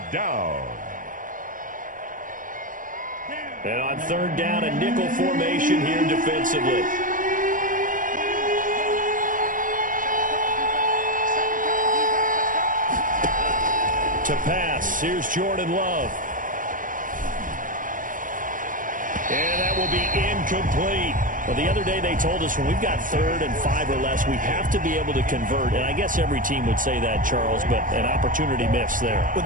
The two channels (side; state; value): left; late; 0.39 ms